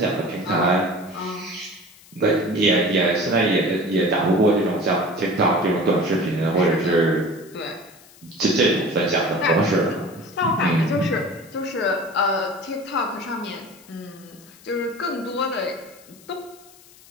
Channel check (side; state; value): left; noise; hiss, 24 dB below the sound